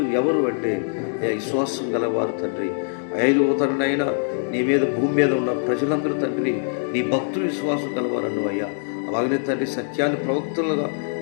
ఎవరు అంటే విశ్వాసం గలవారు తండ్రి. 5వ తరుణైనా నీ మీద, భూమి మీద ఉన్న ప్రజలందరూ తండ్రి నీ భక్తులు విశ్వాసం గలవారను అయ్యా. అలాగనే తండ్రి సత్యాన్ని ప్రవక్తలుగా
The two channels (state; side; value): silent; right; 63 dB below the other